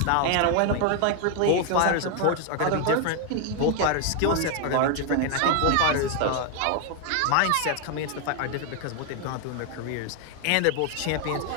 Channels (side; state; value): both; different; correlation 0.00